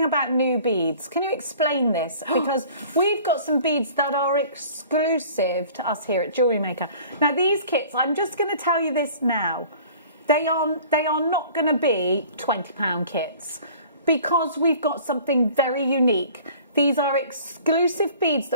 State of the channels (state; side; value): inverted; both; correlation -0.48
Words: about new beads, can you explain this? Because we've got some beads that are exclusive to us here at Jewellery Maker. Now, these kits, I'm just going to tell you this now. They are not going to be £20 kits because we've got something very unique. These are exclusive beads